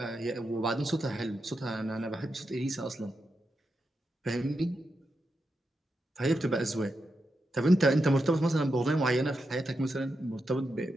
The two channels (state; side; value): normal; both; correlation 0.86